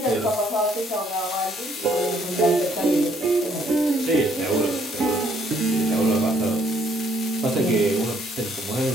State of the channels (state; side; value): normal; both; correlation 0.66